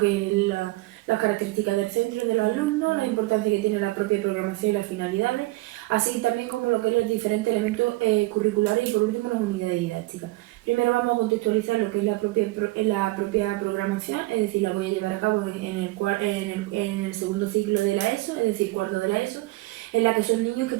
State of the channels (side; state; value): left; quieter; 20.6 dB